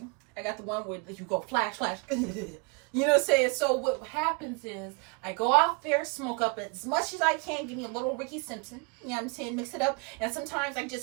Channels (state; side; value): quieter; left; 32.6 dB